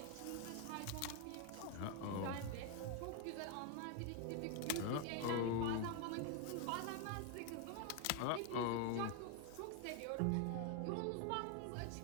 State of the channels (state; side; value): different; both; correlation 0.01